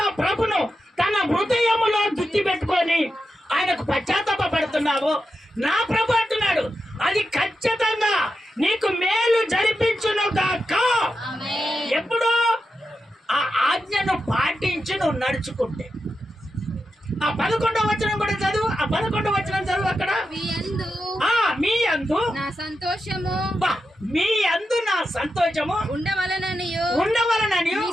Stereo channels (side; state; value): both; normal; correlation 0.88